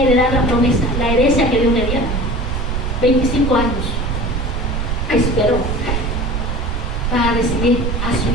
la promesa, la herencia que Dios le diera. 25 años esperó para recibir a su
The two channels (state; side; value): noise; right; rumble, 1 dB below the sound